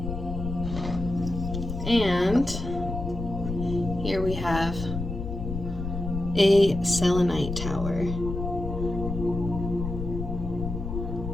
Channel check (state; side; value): noise; left; rumble, 6 dB below the sound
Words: And here we have a Selenite Tower.